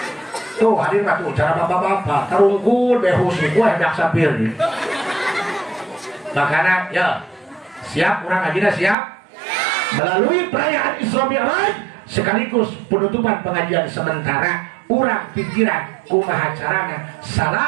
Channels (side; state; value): left; drops out; at 9.0 s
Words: Tuh hadir mah tuh cara bapak-bapak tarungkul behus ku hendak sapir. Makana ya siap urang ngajina siap. Melalui perayaan Isra Mi'raj sekaligus penutupan pengajian sementara urang pikiran kumaha carana